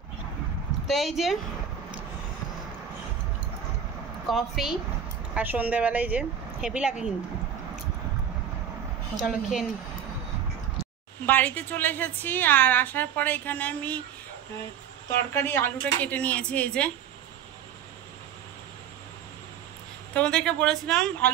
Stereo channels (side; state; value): left; quieter; 8.4 dB